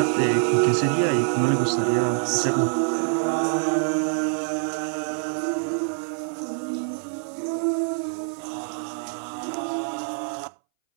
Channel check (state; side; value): silent; left; 62 dB below the other